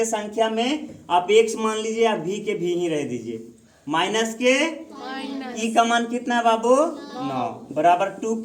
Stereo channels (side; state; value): both; identical; correlation 1.00